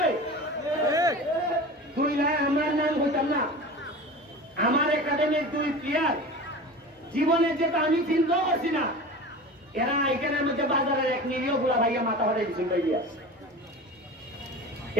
তুই না আমার নাম হইতাম না আমার একাডেমির 2 প্লেয়ার জীবনে যেটা আমি চিন্তা করছি না এরা এখানের মধ্যে বাজারের এক নিরীহ গুলা ভাইয়া মাথা হরে দিচ্ছেন ভাইয়া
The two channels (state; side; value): normal; both; correlation 0.34